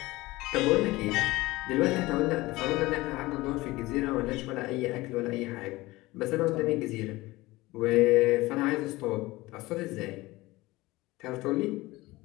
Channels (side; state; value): right; quieter; 19.9 dB